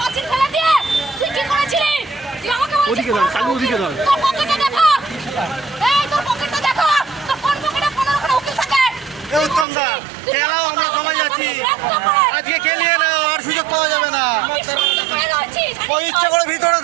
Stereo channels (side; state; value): left; drops out; at 9.7 s